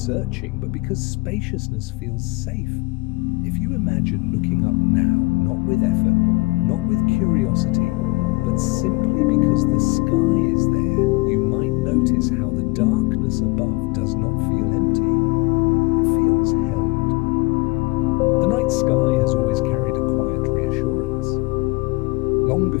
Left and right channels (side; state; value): right; quieter; 24.5 dB